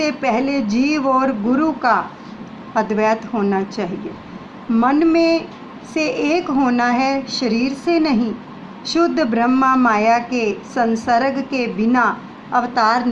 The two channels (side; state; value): both; identical; correlation 1.00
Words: पहले जीव और गुरु का अद्वैत होना चाहिए। मन में से एक होना है, शरीर से नहीं। शुद्ध ब्रह्मा माया के संसर्ग के बिना अवतार